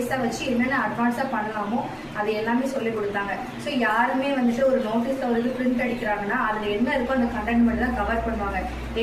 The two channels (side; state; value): both; identical; correlation 1.00